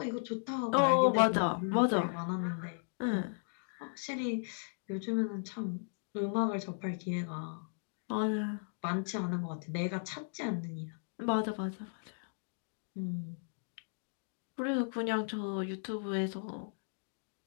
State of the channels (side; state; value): right; silent; digital silence